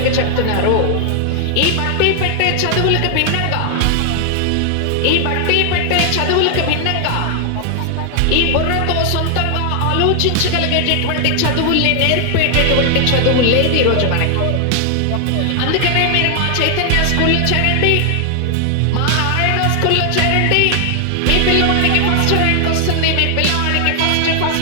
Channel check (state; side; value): different; both; correlation 0.00